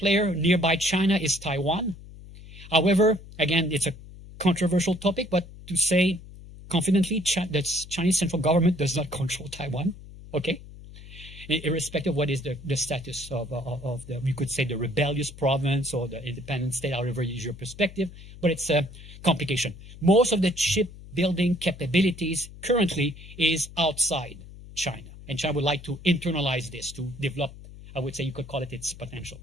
nearby China is Taiwan. However, again, it's a controversial topic, but to say confidently, the Chinese central government does not control Taiwan, okay? irrespective of what is the status of the, you could say, the rebellious province or the independent state, however you use your perspective, but it's a complication. Most of the chip building capabilities currently is outside China, and China would like to internalize this to develop, I would say you could call it its potential.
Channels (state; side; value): noise; left; hum, 17 dB below the sound